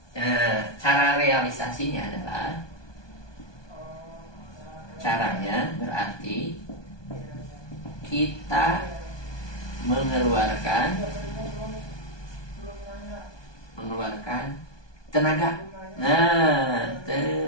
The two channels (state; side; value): late; right; 1.2 ms